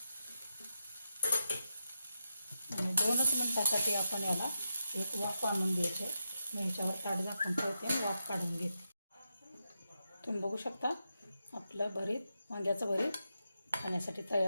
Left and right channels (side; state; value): both; inverted; correlation -0.87